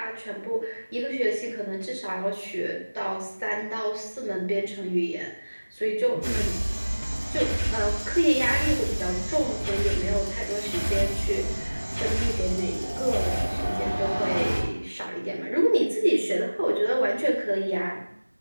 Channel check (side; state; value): both; inverted; correlation -1.00